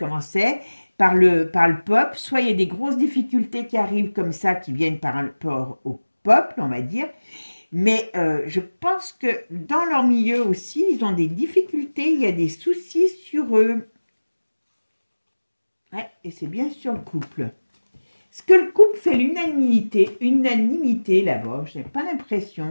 c'est. Par le peuple, soit il y a des grosses difficultés qui arrivent comme ça, qui viennent par rapport au peuple, on va dire. Mais je pense que dans leur milieu aussi, ils ont des difficultés, il y a des soucis sur eux. Ouais, et c'est bien sur le couple. Est-ce que le couple fait l'unanimité là-bas? Je n'ai pas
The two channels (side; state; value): both; inverted; correlation -1.00